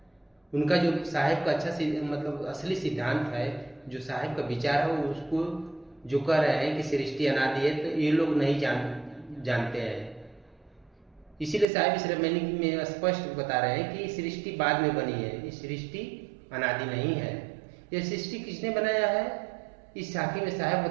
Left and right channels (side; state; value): left; drops out; at 11.7 s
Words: उनका जो साहब का अच्छा मतलब असली सिद्धांत है, जो साहब का विचार है, उसको जो कह रहे हैं कि सृष्टि अनादि है, तो ये लोग नहीं जानते हैं। इसीलिए साहब इस रमनी में स्पष्ट बता रहे हैं कि सृष्टि बाद में बनी है, ये सृष्टि अनादि नहीं है। यह सृष्टि किसने बनाया है? इस साखी में साहब